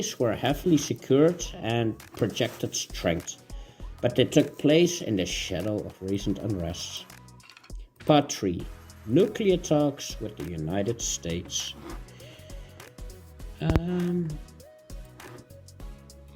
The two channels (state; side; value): identical; both; correlation 1.00